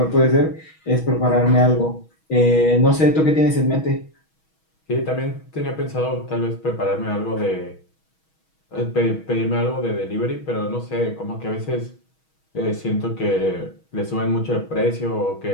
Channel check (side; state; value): right; late; 6.3 ms